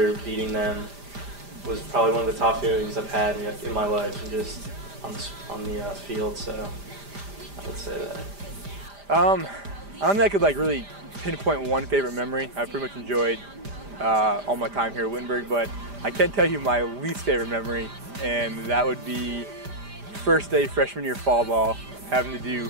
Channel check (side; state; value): left; late; 5.0 ms